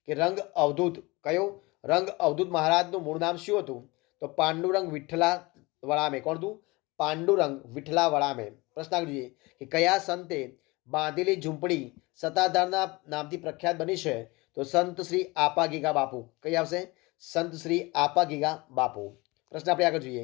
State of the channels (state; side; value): quieter; right; 23.7 dB